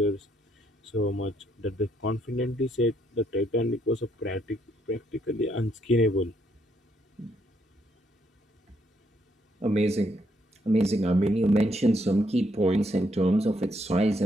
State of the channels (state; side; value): normal; both; correlation 0.73